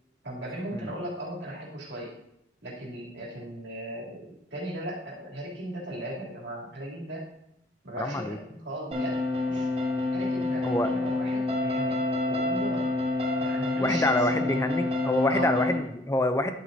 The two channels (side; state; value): both; normal; correlation 0.59